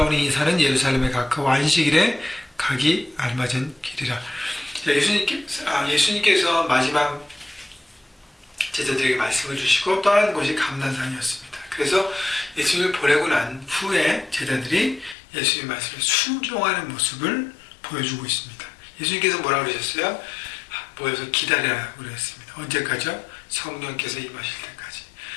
이 산은 예루살렘에 가까워 안식일에 가기 알맞은 길이라. 예수님께서 마지막 제자들에게 말씀을 주시고 떠나는 곳이 감난산이었습니다. 그래서 예수님을 보내고 난 후에 제자들이 예수님의 말씀에 순종하는 모습을 보여주고 있습니다. 예수님께서 뭐라고 그러셨어요? 모여서 기다리라고 그랬습니다. 언제까지요? 성령께서 임하실 때까지.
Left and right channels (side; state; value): right; drops out; at 15.2 s